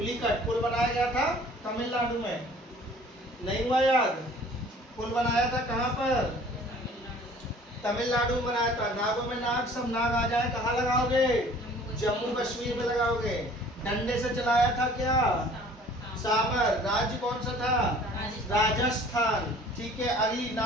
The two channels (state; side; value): normal; both; correlation 0.51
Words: पुल बनाया गया था तमिलनाडु में, नहीं हुआ याद? पुल बनाया था कहाँ पर? तमिलनाडु में बनाया था। नागों में नाग, सब नाग आ जाए कहाँ लगाओगे? जम्मू कश्मीर में लगाओगे। डंडे से चलाया था क्या? साबर। राज्य कौन सा था? राजस्थान। ठीक है, अगली